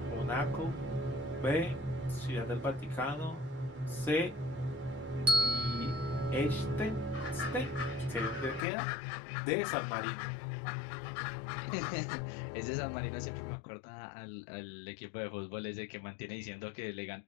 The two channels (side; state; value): right; drops out; at 8.7 s